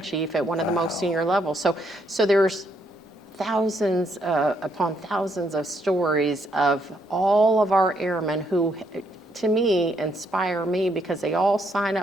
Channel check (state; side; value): normal; both; correlation 0.73